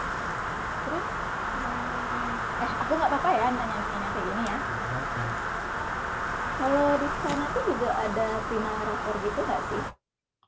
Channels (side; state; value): both; identical; correlation 1.00